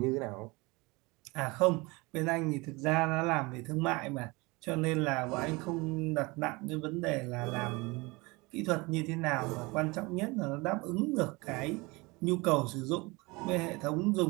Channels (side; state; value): left; quieter; 24.8 dB